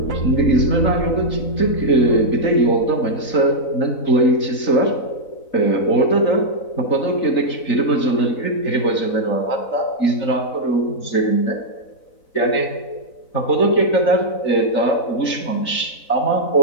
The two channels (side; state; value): right; late; 4.0 ms